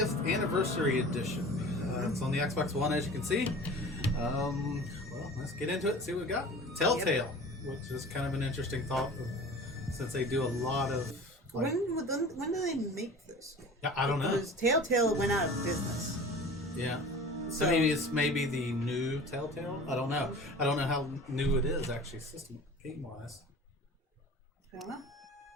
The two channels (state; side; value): normal; both; correlation 0.40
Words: anniversary edition. It's on the Xbox One, as you can see. Well, let's get into it and see what we got. Telltale, which is kind of an interesting thought, since they do a lot of. Like, when do they make this? Yeah, I don't know. Because Telltale went out of business. Yeah. So it's maybe the new Telltale. I don't know. I don't know how new it is actually, system game wise. I don't know.